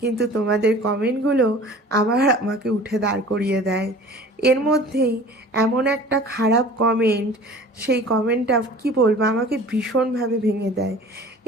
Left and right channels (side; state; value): both; normal; correlation 0.44